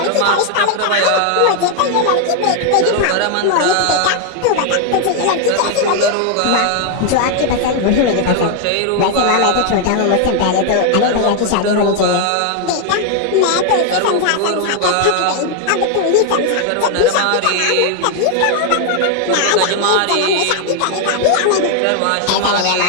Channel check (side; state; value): both; different; correlation 0.00